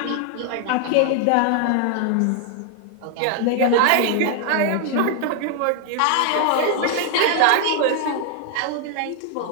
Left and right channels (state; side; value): different; both; correlation 0.00